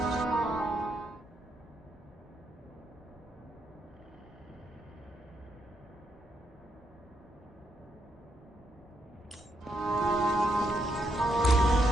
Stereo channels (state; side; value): normal; both; correlation 0.79